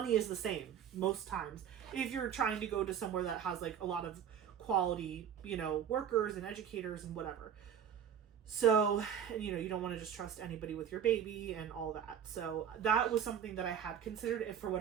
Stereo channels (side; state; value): left; quieter; 8.7 dB